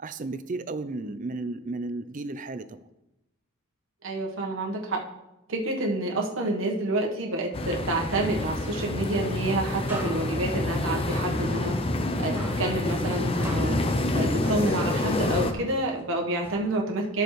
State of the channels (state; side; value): normal; both; correlation 0.40